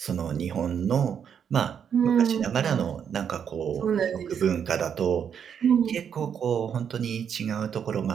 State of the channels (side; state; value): left; quieter; 7.9 dB